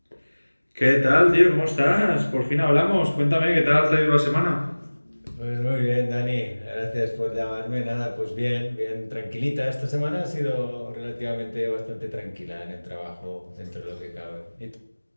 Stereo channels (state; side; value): inverted; both; correlation -1.00